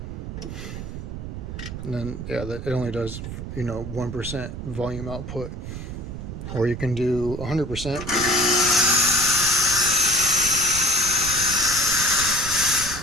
and then yeah, it only does, you know, 1% volume output. Or you can do 100%.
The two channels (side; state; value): right; noise; rumble, 8 dB below the sound